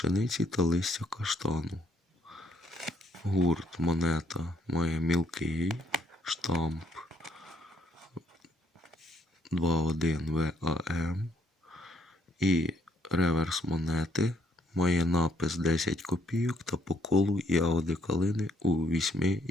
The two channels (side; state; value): both; normal; correlation 0.69